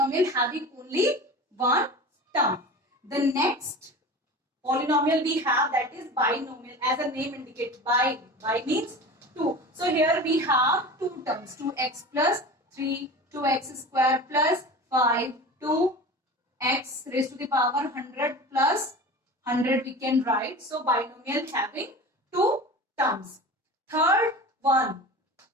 having only one term. The next polynomial we have, that is binomial, as the name indicates. Bi means 2. So here we have two terms, 2x plus 3, 2x square plus 5, 2x raised to the power 100 plus 100 we can write. So binomial having two terms. Third one,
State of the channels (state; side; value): normal; both; correlation 0.34